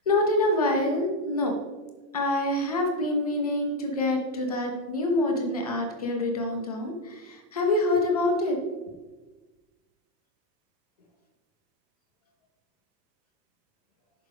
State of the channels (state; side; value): normal; both; correlation 0.07